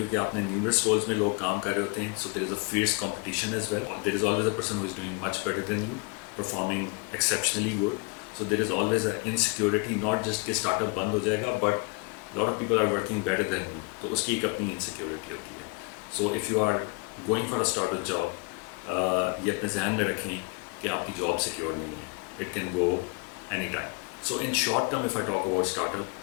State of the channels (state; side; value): quieter; right; 30.8 dB